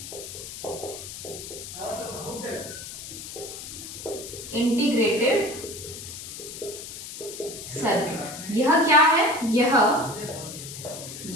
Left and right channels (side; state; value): left; noise; hiss, 10 dB below the sound